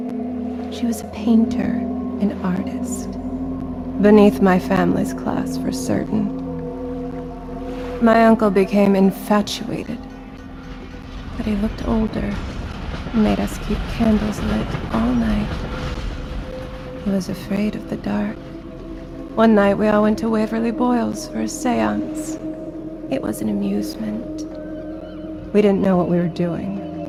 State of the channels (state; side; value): identical; both; correlation 1.00